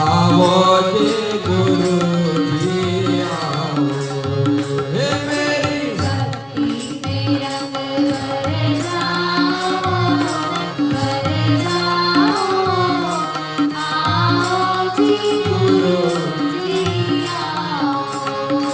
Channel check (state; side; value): identical; both; correlation 1.00